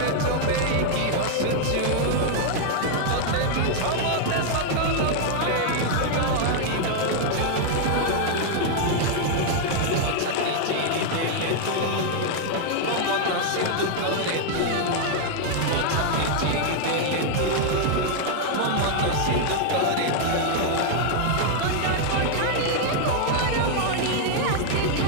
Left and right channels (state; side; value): different; both; correlation 0.00